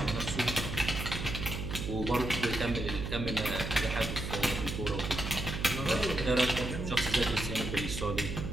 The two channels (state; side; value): noise; right; hum, 5 dB below the sound